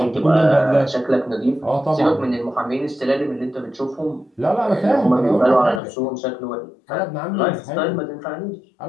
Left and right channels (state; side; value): drops out; right; at 5.8 s